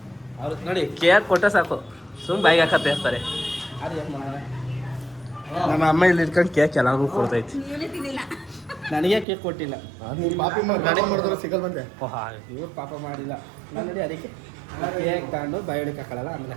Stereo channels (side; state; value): left; drops out; at 9.2 s